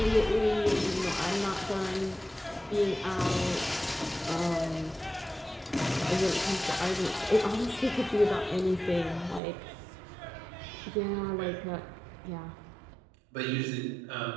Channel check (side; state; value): left; drops out; at 9.4 s